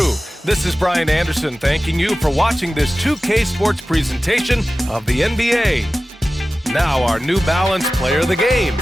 this is Brian Anderson thanking you for watching this 2K Sports presentation of the NBA. Now our New Balance player of the game,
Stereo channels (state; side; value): normal; both; correlation 0.96